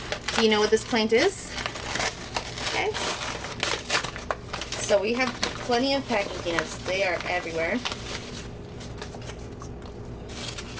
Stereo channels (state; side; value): identical; both; correlation 1.00